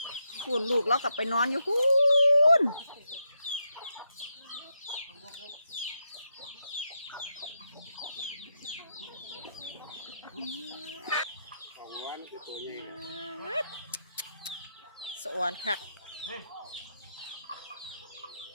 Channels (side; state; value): both; inverted; correlation -0.83